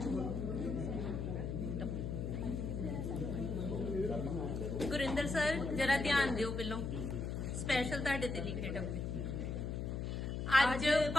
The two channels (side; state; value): left; noise; hum, 3 dB below the sound